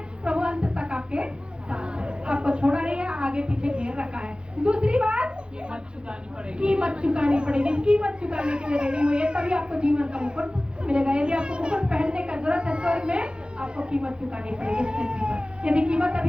प्रभु अंत तक आपके साथ है, आपको छोड़ा नहीं है, आगे पीछे घेर रखा है। दूसरी बात, कीमत चुकानी पड़ेगी। कीमत चुकाने के लिए रेडी हुई है, तभी आपको जीवन का मुकुट मिलेगा। यदि आपको मुकुट पहनने का जरूरत है स्वर्ग में, आपको कीमत चुकानी पड़ेगी इस पृथ्वी पर। यदि कीमत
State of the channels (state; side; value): late; left; 0.051 ms